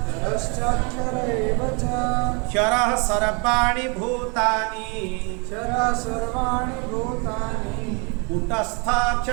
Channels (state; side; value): quieter; left; 33.0 dB